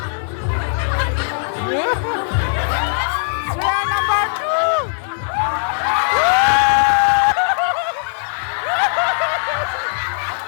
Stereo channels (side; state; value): right; silent; 60 dB below the other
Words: Swear number 2.